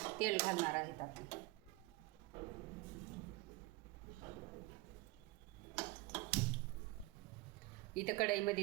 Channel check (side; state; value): left; quieter; 21.3 dB